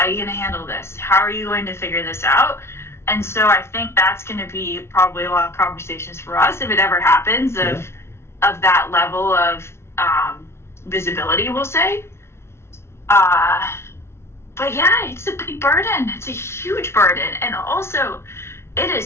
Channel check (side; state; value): right; late; 0.12 ms